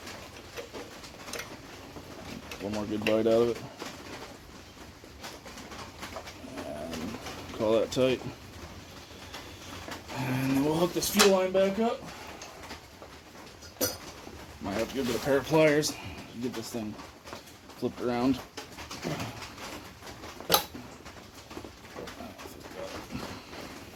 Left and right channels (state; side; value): identical; both; correlation 1.00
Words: One more good bite out of it. And call that tight. And then we'll hook this fuel line back up. Might have to go get a pair of pliers to get this thing flipped around.